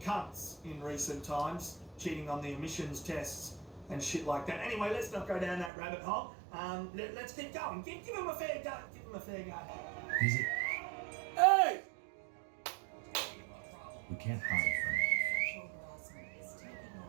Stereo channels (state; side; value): drops out; left; at 5.7 s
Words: in recent times, cheating on the emissions tests and shit like that. Anyway, let's not go down that rabbit hole. Let's keep going. Give him a fair go. Give him a fair go. Is it? Hey! We can't hide from it.